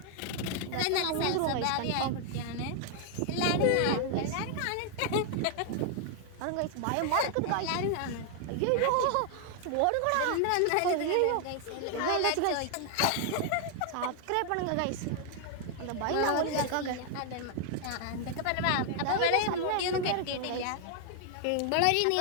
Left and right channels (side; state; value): both; different; correlation 0.00